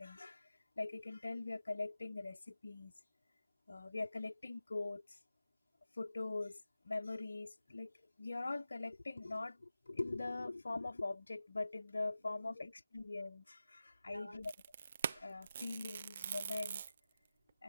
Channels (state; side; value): inverted; both; correlation -0.93